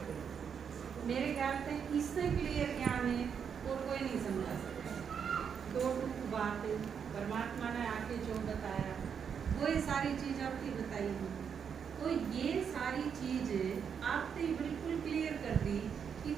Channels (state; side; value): quieter; left; 7.2 dB